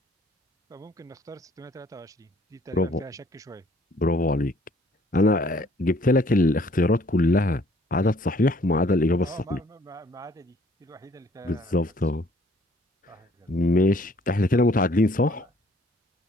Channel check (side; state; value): both; normal; correlation 0.60